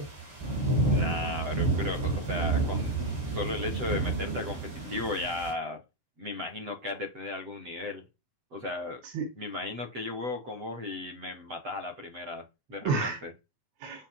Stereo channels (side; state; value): left; late; 8.0 ms